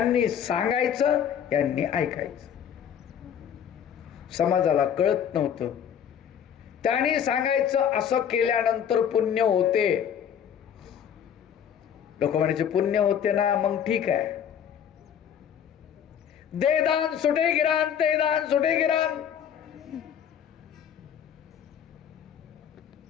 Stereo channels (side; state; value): right; quieter; 8.6 dB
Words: सांगायचं, यांनी ऐकायचं. समाजाला कळत नव्हतं. त्यांनी सांगायचं, असं केल्यानंतर पुण्य होते. लोक म्हणायचे पुण्य होते ना, मग ठीक आहे, दे दान सुटे गिरान, ते दान सुटे गिरान.